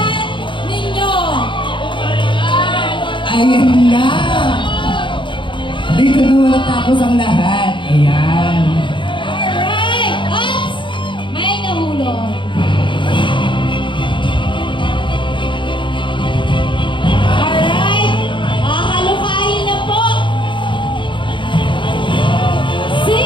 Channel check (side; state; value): right; late; 0.24 ms